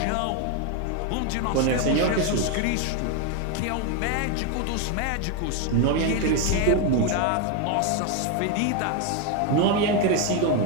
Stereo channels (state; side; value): different; both; correlation 0.01